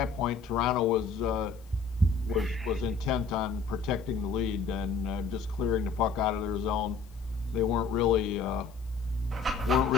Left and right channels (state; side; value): quieter; right; 4.8 dB